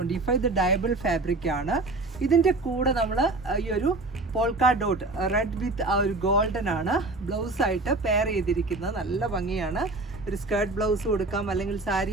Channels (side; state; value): left; quieter; 3.0 dB